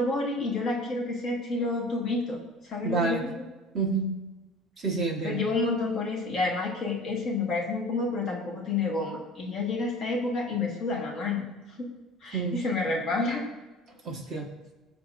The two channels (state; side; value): normal; both; correlation 0.40